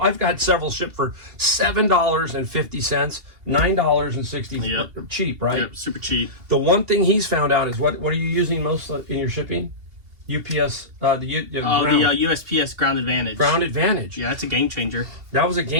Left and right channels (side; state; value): left; late; 2.7 ms